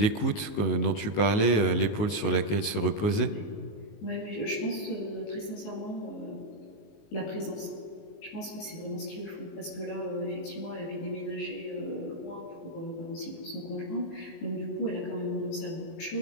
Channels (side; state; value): right; late; 19 ms